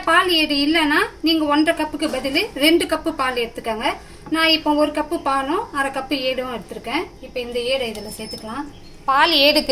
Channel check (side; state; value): both; identical; correlation 1.00